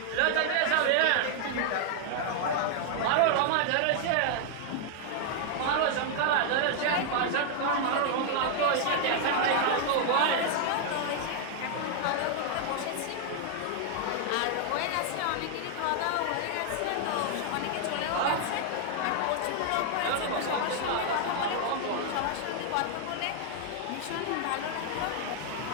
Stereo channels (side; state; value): both; different; correlation 0.00